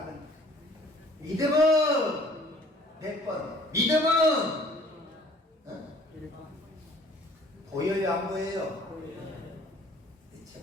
믿음은 몇 번? 믿음은 보여요, 안 보여요?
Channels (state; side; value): normal; both; correlation 0.55